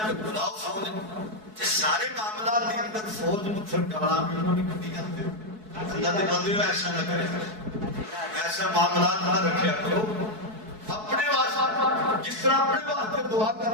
بلاؤ فوج. سارے معاملات کے اندر فوج پتھر ڈالا بھی انہوں نے کبھی کرتے. اللہ کے بندے ایسا نہ کرے، ایسا معاملات نہ رکھیا کرو. اپنے واسطے جس طرح اپنے واسطے دعا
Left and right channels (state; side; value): late; left; 4.6 ms